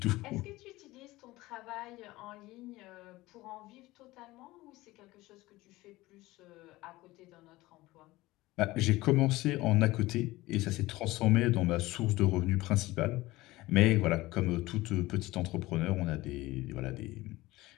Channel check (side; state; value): right; quieter; 19.0 dB